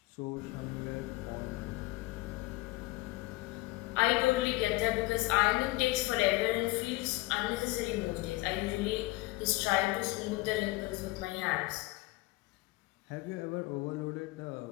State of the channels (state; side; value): quieter; right; 20.8 dB